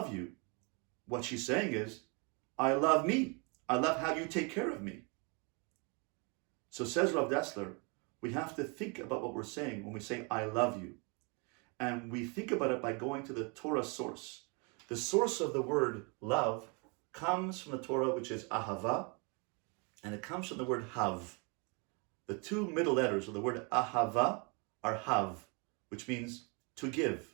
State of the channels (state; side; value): quieter; left; 32.8 dB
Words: you. What she's saying is, I love me. I love how you take care of me. So says Rav Dessler, we have to think about what we're saying when we say, I love you. And we think about it by going to the Torah source. The source of the word love comes from the Torah, which is ahava, and it comes from the word hav. The two middle letters of the word ahava are hav, which means to